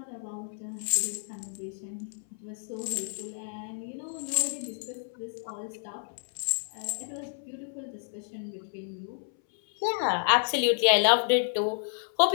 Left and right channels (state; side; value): silent; right; 58 dB below the other